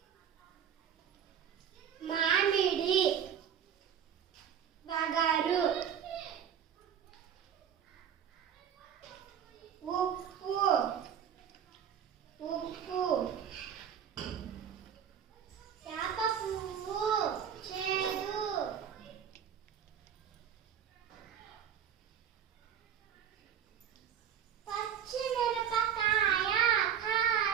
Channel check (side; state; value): left; quieter; 8.8 dB